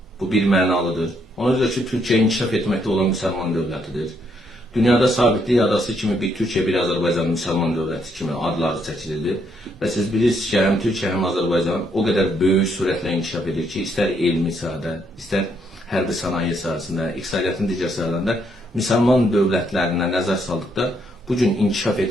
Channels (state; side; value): normal; both; correlation 0.73